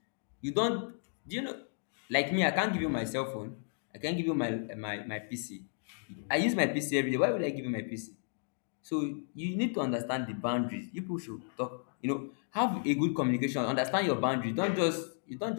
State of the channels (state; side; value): silent; right; digital silence